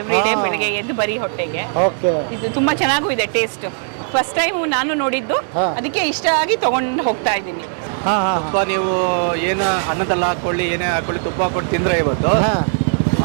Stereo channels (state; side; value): silent; left; digital silence